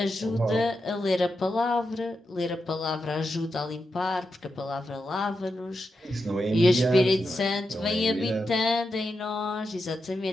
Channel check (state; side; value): normal; both; correlation 0.87